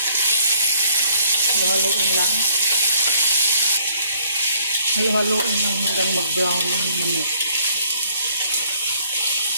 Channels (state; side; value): inverted; both; correlation -0.62